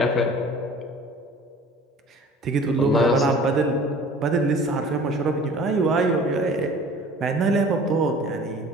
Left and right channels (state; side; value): normal; both; correlation 0.46